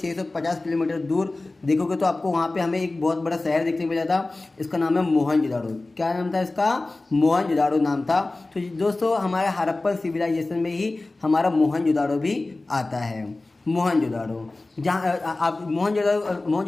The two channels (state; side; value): quieter; right; 3.1 dB